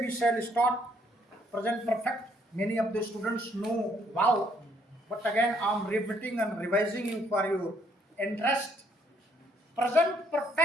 shall start present perfect. Many of the students know wow, but again I am repeating and revising you for your interest. Present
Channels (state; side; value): normal; both; correlation 0.68